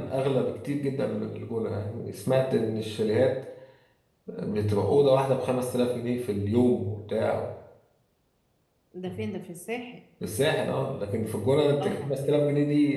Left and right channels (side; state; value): both; identical; correlation 1.00